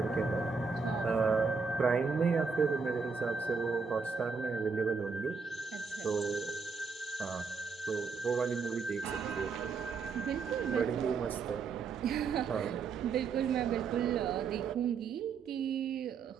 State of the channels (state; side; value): quieter; left; 5.2 dB